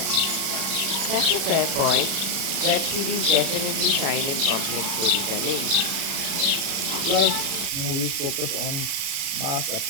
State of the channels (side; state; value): left; late; 37 ms